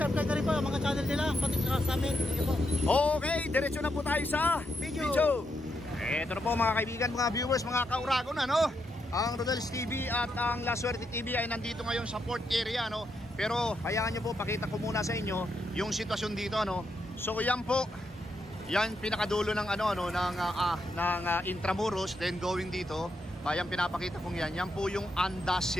na rin po ang mga channel nila, pati sa amin. Okay, diretso na po tayo sa video. Ito na po mga kaibigan, mga viewers, mga kauragon, ano? Ang Rodel's TV at ang La Suerte TV ay nandito ngayon sa port area, no? Pero hayaan nyo po, pakita ko muna sa inyo yung sitwasyon dito, ano? So yan po, yan pinakadulo ng Intramuros, then going dito, ayan pinapakita kong yan. Yan po yung Anda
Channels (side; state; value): both; normal; correlation 0.81